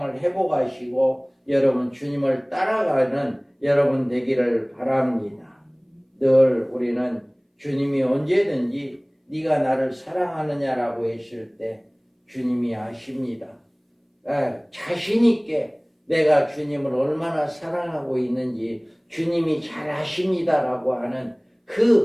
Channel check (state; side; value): identical; both; correlation 1.00